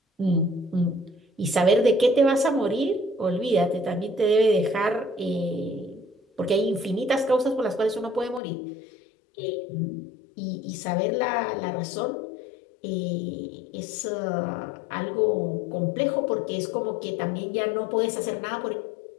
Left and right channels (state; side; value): drops out; right; at 8.4 s